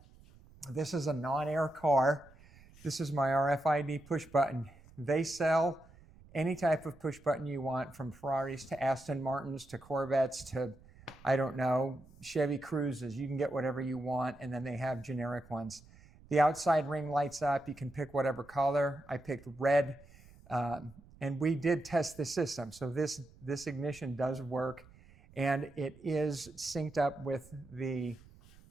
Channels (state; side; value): noise; right; rumble, 23 dB below the sound